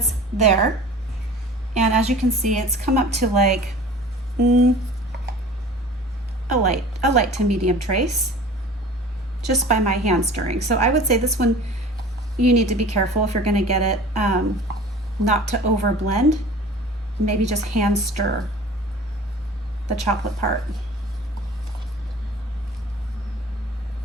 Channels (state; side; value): normal; both; correlation 0.42